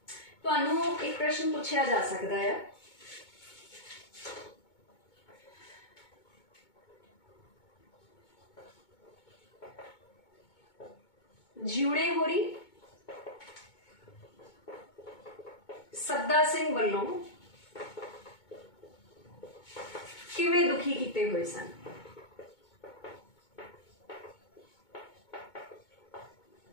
तुहानूं एक प्रश्न पूछा जा सकता है, जिउणे होरी सद्दा सिंह वल्लों किवें दुखी कीते हुए सन?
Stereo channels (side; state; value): right; late; 2.2 ms